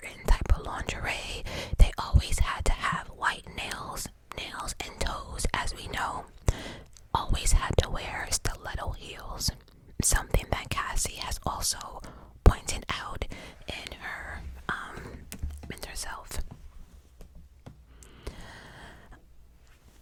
type of lingerie. They always had to have white nails and toes, as we know. Always had to wear stiletto heels, something that Cassie has also pointed out in herself.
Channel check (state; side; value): identical; both; correlation 1.00